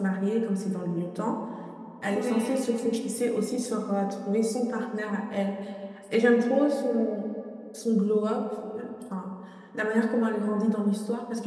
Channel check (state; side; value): identical; both; correlation 1.00